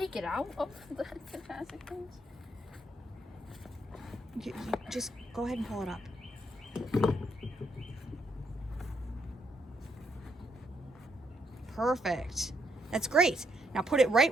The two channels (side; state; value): both; normal; correlation 0.74